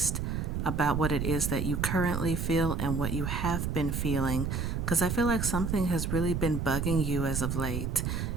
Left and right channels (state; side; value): noise; right; rumble, 1 dB below the sound